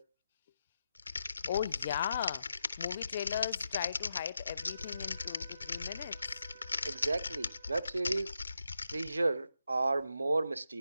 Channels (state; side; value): inverted; both; correlation -0.85